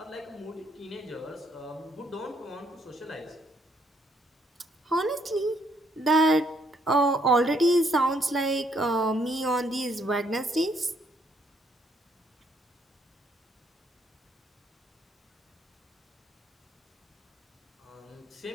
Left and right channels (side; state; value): both; normal; correlation 0.70